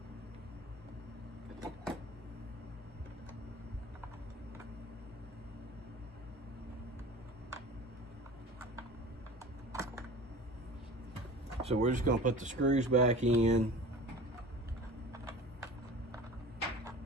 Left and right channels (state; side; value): normal; both; correlation 0.39